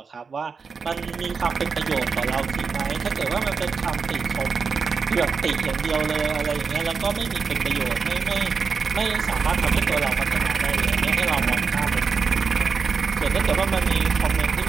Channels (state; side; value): quieter; left; 5.3 dB